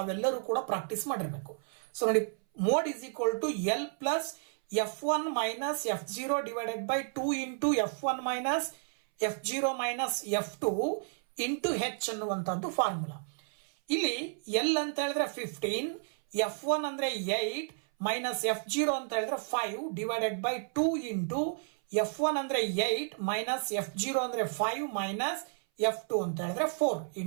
ಕೂಡ ಪ್ರಾಕ್ಟೀಸ್ ಮಾಡಿರ್ಬೇಕು. ಸೊ ನೋಡಿ, mode is equal to L plus F1 minus F0 divided by 2 into F1 minus F0 minus F2 into H ಅನ್ನುವಂಥದ್ದು ಫಾರ್ಮುಲಾ. ಇಲ್ಲಿ L ಅಂತ ಹೇಳಿದ್ರೆ 15, F1 ಅಂದ್ರೆ 8 ಮೈನಸ್ F0 ಅಂತ ಹೇಳಿದ್ರೆ 5 ಡಿವೈಡೆಡ್ ಬೈ 2 ಇಂಟು F1 ಅಂದ್ರೆ 8 ಮೈನಸ್ F0 ಅಂದ್ರೆ 5 ಮೈನಸ್ F2 ಅಂತ ಹೇಳಿದ್ರೆ 4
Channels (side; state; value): left; silent; 57 dB below the other